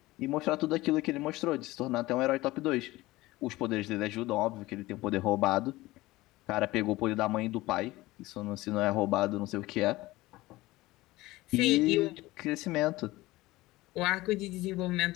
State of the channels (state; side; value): quieter; right; 18.9 dB